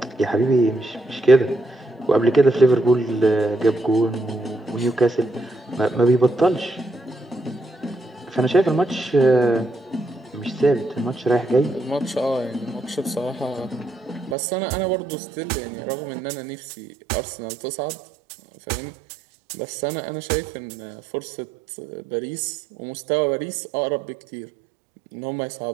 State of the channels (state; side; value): drops out; left; at 14.4 s